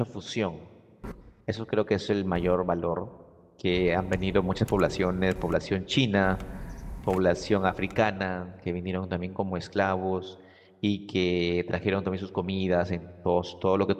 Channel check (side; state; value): both; identical; correlation 1.00